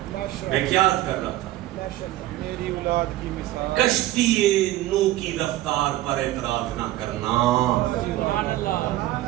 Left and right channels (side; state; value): left; quieter; 15.5 dB